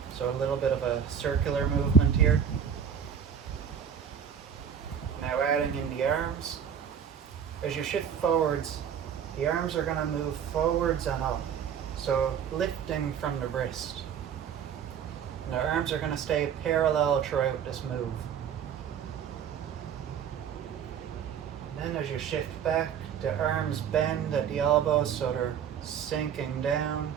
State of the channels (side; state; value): left; quieter; 8.0 dB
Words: So a little bit of a circular movement here. Now adding in the arms. As you shift forwards, the arms are going to move forwards and up. So lifting from the wrist. And the arms are going to stay parallel throughout this move. Then as you shift back, the arms bend at the elbows so they're sinking down,